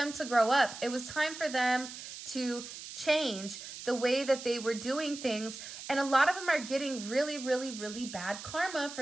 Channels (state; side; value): noise; right; hiss, 11 dB below the sound